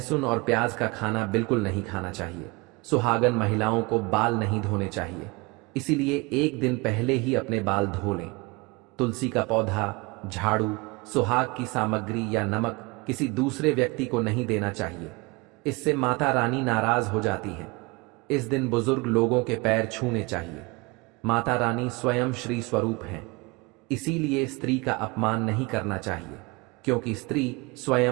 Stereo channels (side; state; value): left; quieter; 25.9 dB